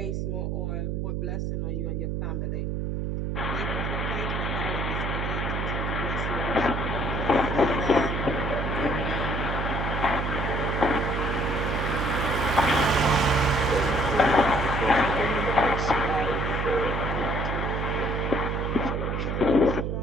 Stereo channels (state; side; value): noise; right; hum, 1 dB below the sound